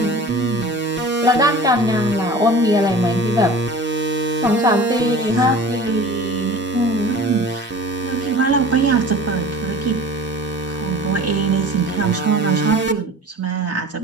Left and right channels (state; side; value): normal; both; correlation 0.40